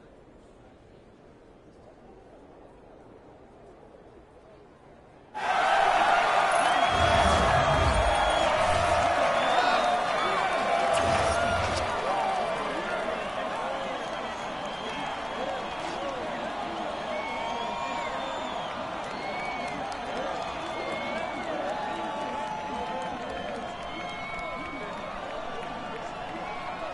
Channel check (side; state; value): both; identical; correlation 1.00